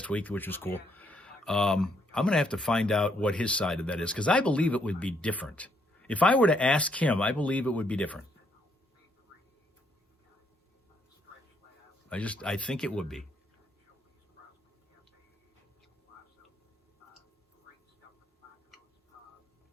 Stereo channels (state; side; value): normal; both; correlation 0.72